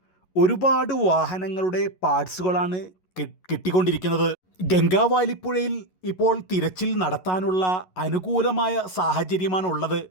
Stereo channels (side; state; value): right; late; 11 ms